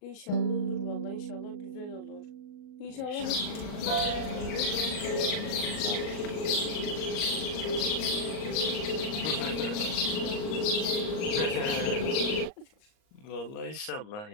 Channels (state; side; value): late; right; 38 ms